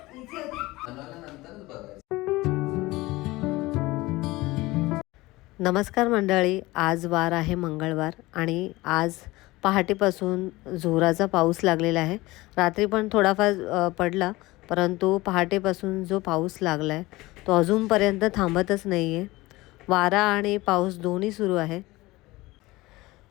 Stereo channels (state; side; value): quieter; right; 20.2 dB